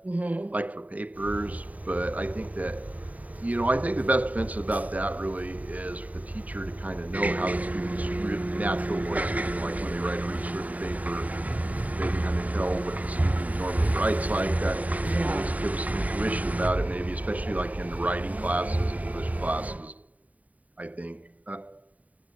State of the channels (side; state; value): left; late; 0.071 ms